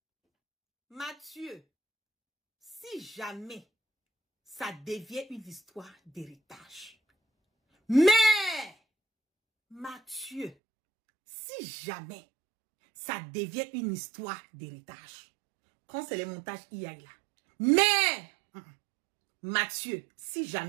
Mathieu, si jamais ça devient une histoire d'héritage, mais, Mathieu, si jamais ça devient une histoire d'héritage, quand c'est les montages IA là, mais, Mathieu, si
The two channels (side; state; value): left; drops out; at 10.6 s